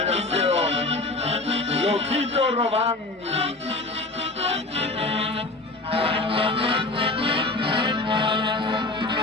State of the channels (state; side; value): quieter; right; 3.1 dB